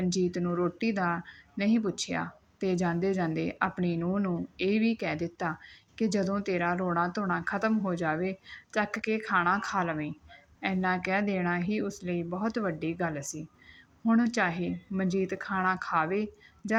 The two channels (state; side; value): identical; both; correlation 1.00